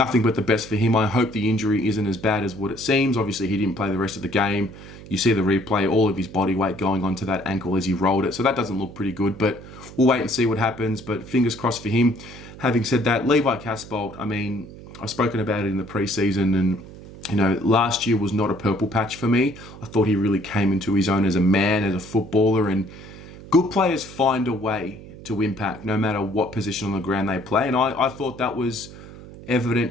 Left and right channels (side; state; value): right; noise; hum, 16 dB below the sound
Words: but the best for him. I hope the injury isn't as bad as what it seems. Obviously, he didn't play the rest of the game. You see the replay, all of his body weight going onto that ankle as he rolled it, so that doesn't look pretty good, but we'll wait and see what happens, but fingers crossed for him. Having said that, Levi Casbolt, I've spoken about it in the preseason, and last year was not a purple patch for me. I thought he really came into his own as a man, as a footballer, and good players find a way to impact no matter what position on the ground they play, and I thought that was evident